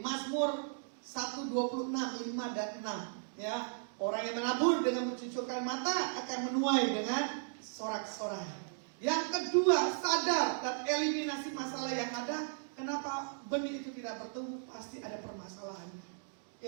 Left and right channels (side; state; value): left; silent; digital silence